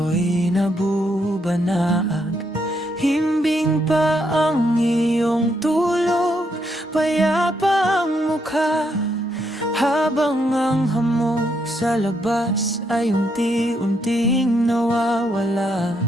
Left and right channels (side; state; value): both; normal; correlation 0.76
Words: nabubanaag, himbing pa ang iyong tulog, payapa ang mukha, habang ang hamog sa labas ay unti-unting nawawala.